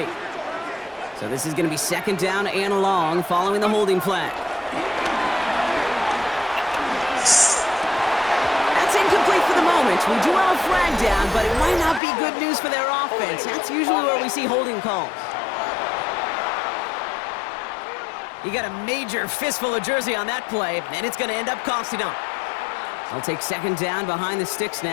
So this is going to be 2nd down and long following the holding flag. That's incomplete for the moment. We do have a flag down, but it might not be good news for their offense. That's usually where we see holding calls. You got a major fistful of jersey on that play, and it's going to end up costing them. They'll take 2nd down behind the sticks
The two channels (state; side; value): drops out; right; at 12.0 s